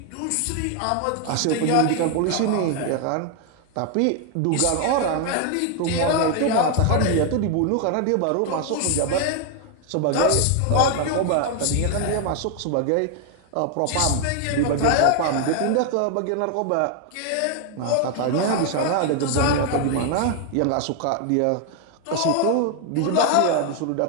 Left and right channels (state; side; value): different; both; correlation 0.01